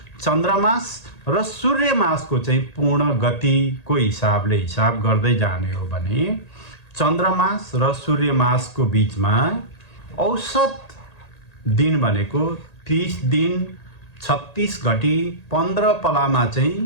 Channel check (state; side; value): late; right; 1.8 ms